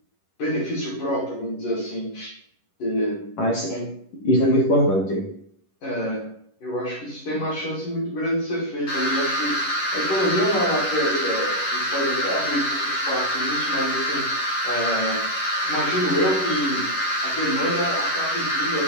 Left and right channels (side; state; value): right; late; 11 ms